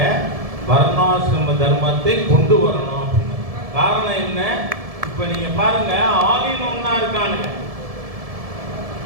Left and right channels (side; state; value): left; late; 1.7 ms